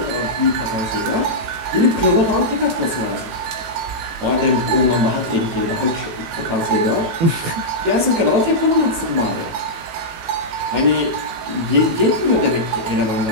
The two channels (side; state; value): left; late; 18 ms